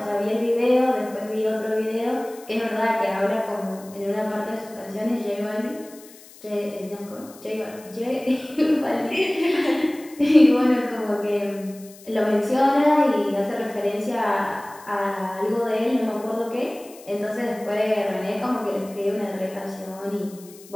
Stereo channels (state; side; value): noise; left; hiss, 21 dB below the sound